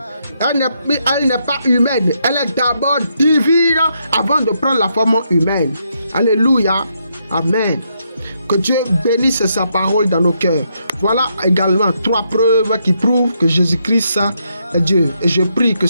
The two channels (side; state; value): both; inverted; correlation -0.78